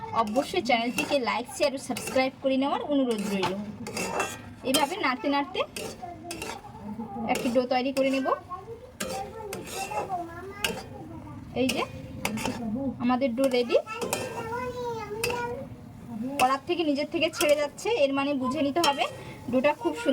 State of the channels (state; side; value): identical; both; correlation 1.00